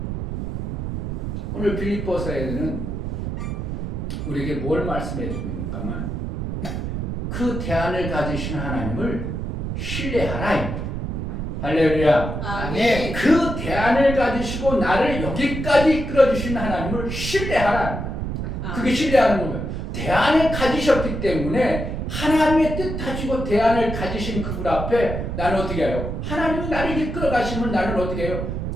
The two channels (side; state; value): right; noise; rumble, 4 dB below the sound